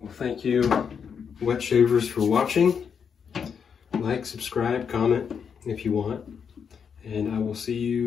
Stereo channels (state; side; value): quieter; right; 6.9 dB